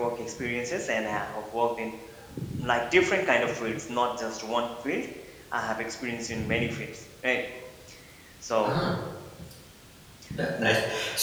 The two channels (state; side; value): identical; both; correlation 1.00